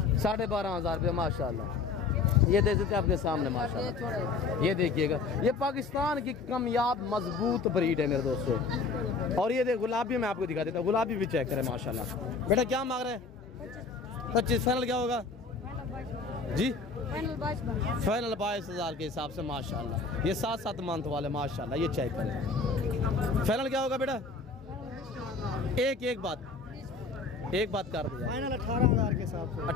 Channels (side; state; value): right; quieter; 4.4 dB